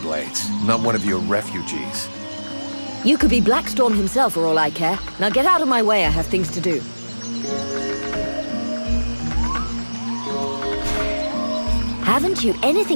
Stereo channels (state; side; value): inverted; both; correlation -1.00